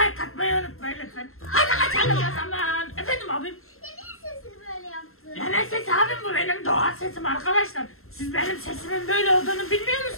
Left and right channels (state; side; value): late; right; 0.62 ms